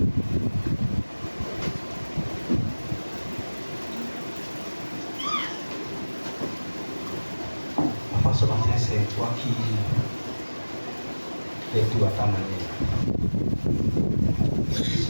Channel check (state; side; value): inverted; both; correlation -1.00